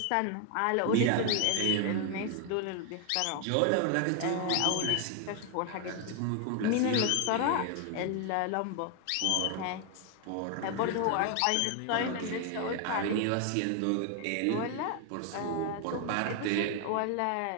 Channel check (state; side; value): different; both; correlation 0.01